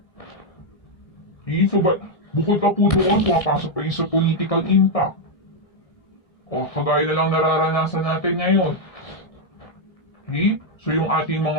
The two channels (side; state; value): right; late; 1.6 ms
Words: Okay? So bukod pa po doon, pumapasok pa yung sa political impact. O kagaya na lang nararanasan natin ngayon. Okay? So yung ating